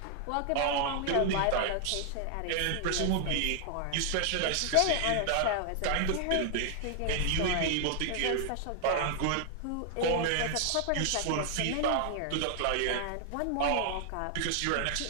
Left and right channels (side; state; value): both; different; correlation 0.00